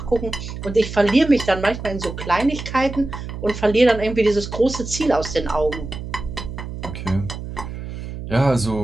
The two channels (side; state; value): right; noise; hum, 9 dB below the sound